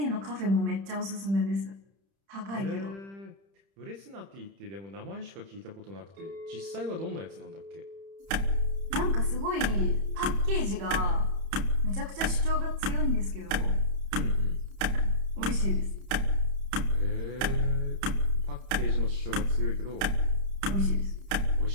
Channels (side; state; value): left; late; 30 ms